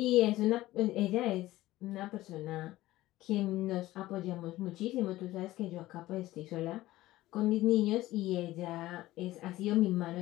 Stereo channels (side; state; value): right; quieter; 16.6 dB